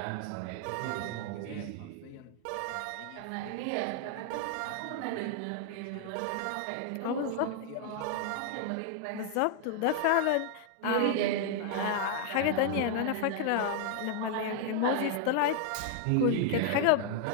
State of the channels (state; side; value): different; both; correlation 0.00